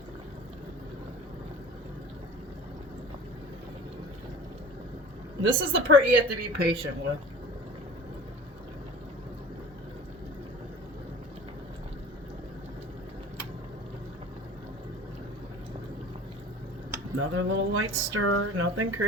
This is the part you have to be patient with. Another little light stir, nothing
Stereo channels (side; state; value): both; normal; correlation 0.42